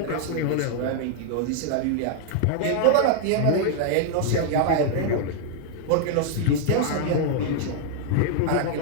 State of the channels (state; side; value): different; both; correlation 0.00